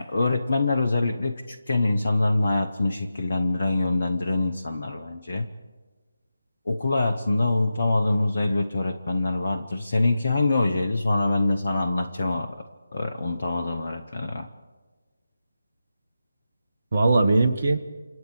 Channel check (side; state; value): both; inverted; correlation -0.90